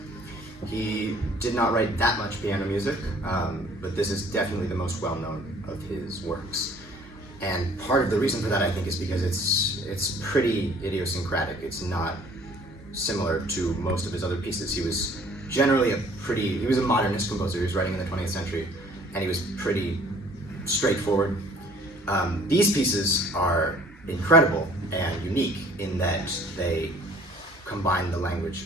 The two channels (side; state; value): both; normal; correlation 0.55